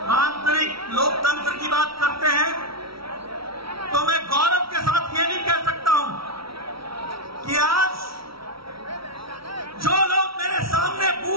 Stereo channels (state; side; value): late; left; 0.75 ms